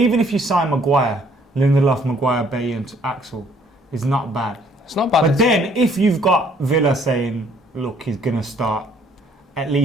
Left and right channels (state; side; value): normal; both; correlation 0.62